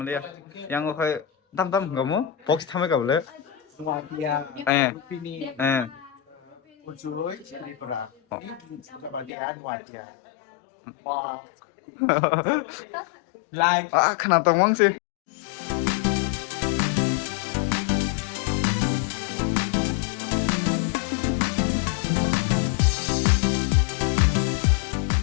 Yang go kai tam gamu box thame ka bole. Nuatia. Eh. Rupini. Eh. Ujoy. Tripura. Kebahagiaan Nuatia. Wah. Like. Ah, kenapa tawang sih?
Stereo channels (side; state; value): right; drops out; at 9.3 s